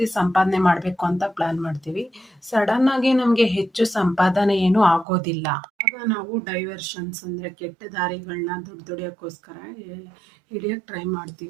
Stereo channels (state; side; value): drops out; left; at 5.1 s